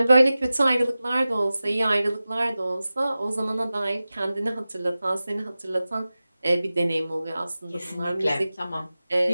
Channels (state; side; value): inverted; both; correlation -0.95